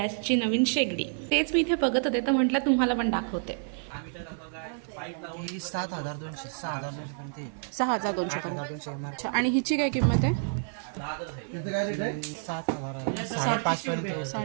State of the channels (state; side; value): silent; left; digital silence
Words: नवीन शेगडी. तेच मी इथे बघत होते तर म्हटलं तुम्हाला पण दाखवते. 6,200 पर्यंत. आणि हिची काय किंमत आहे?